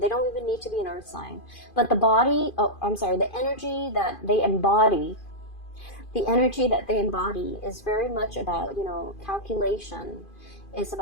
don't even need to be an earth sign. But the energy that they embody, is very much about, calculation. It's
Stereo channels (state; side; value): late; right; 2.5 ms